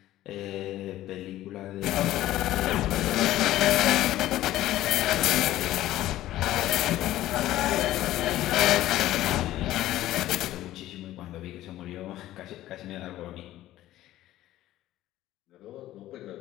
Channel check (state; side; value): quieter; right; 14.6 dB